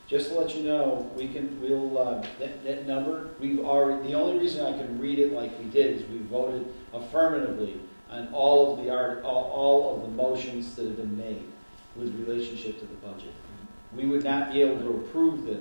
Just to let you know, that number, the only reason I can read it like we did is we voted affirmatively on all of the motions that have been made with relationship to the budget. We would not be able to approve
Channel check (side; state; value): both; inverted; correlation -1.00